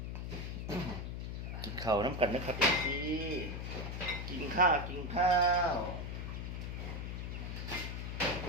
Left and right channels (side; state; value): left; noise; hum, 5 dB below the sound